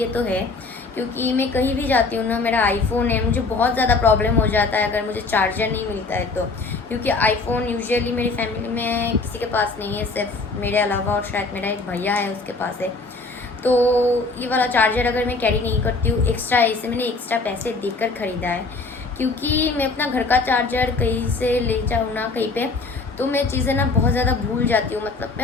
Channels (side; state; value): right; quieter; 3.7 dB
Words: तो है, क्योंकि मैं कहीं भी जाती हूँ ना, मेरा आईफोन है, मुझे बहुत ज़्यादा प्रॉब्लम हो जाता है अगर मुझे चार्जर नहीं मिलता है तो. क्योंकि आईफोन यूजुअली मेरी फैमिली में किसी के पास नहीं है, सिर्फ मेरे अलावा, और शायद मेरा एक भैया है उसके पास है. तो ये वाला चार्जर अगर मैं कैरी नहीं करती हूँ एक्स्ट्रा, इसे मैंने एक्स्ट्रा पैसे देकर ख़रीदा है, क्योंकि मैं अपना घर का चार्जर कहीं से ले जाऊँ ना कहीं पे तो मैं चीज़ें ना बहुत ज़्यादा भूल जाती हूँ. मतलब